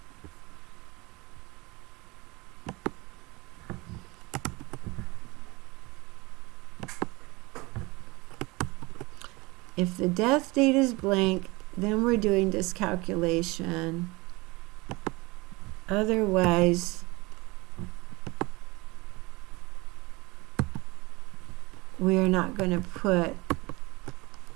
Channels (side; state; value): left; quieter; 23.8 dB